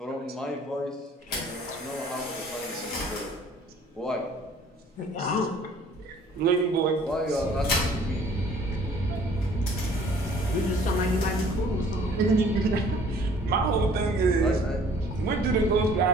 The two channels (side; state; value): both; normal; correlation 0.55